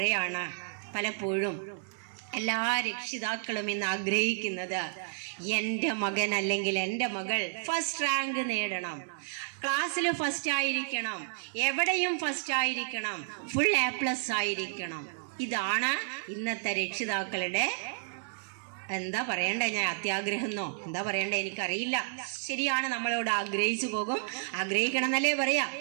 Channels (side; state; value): left; silent; digital silence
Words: പലപ്പോഴും എല്ലാ രക്ഷിതാക്കളും ഇന്ന് ആഗ്രഹിക്കുന്നത് എൻ്റെ മകൻ അല്ലെങ്കിൽ എൻ്റെ മകൾ ഫസ്റ്റ് റാങ്ക് നേടണം, ക്ലാസ്സിൽ ഫസ്റ്റ് ആയിരിക്കണം, എവിടെയും ഫസ്റ്റ് ആയിരിക്കണം, ഫുൾ A+ ആയിരിക്കണം. ഇതാണ് ഇന്നത്തെ രക്ഷിതാക്കളുടെ എന്താ പറയണ്ടേ, ഞാൻ അത്യാഗ്രഹമെന്നോ എന്താ പറയണ്ടേ എനിക്കറിയില്ല. ശരിയാണ്, നമ്മളോട് ആഗ്രഹിച്ചു പോകും. ആഗ്രഹിക്കണം എന്നല്ലേ പറയാ.